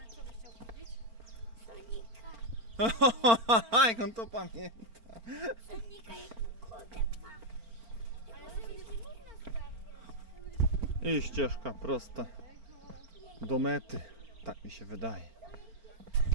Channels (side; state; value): left; late; 4.4 ms